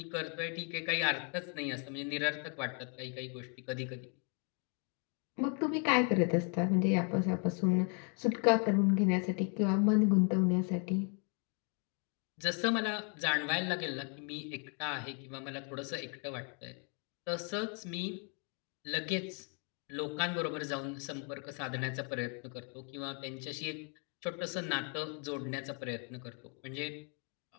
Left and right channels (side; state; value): right; quieter; 38.8 dB